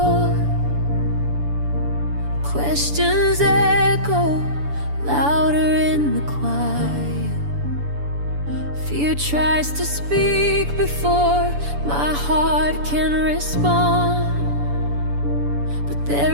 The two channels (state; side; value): late; left; 7.0 ms